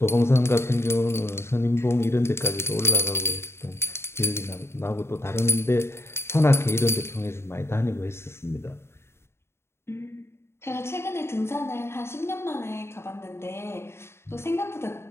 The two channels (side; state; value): right; late; 0.12 ms